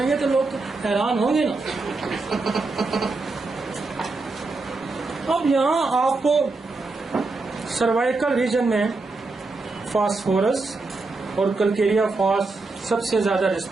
گے تو لوگ تو حیران ہوں گے نا. اب یہاں آپ کو سروائکل ریجن میں فاسفورس اور کلکیریا فاس سب سے زیادہ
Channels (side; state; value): left; quieter; 3.6 dB